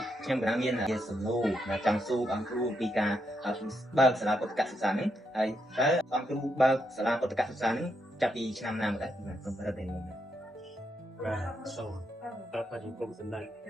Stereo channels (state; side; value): normal; both; correlation 0.80